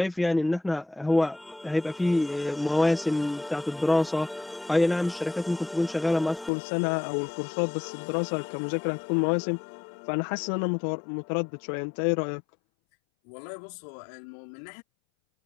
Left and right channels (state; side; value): drops out; right; at 6.5 s